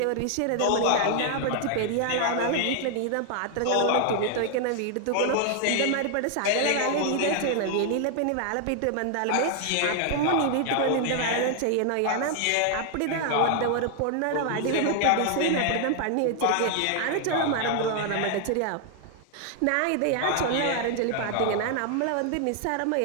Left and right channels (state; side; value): different; both; correlation 0.00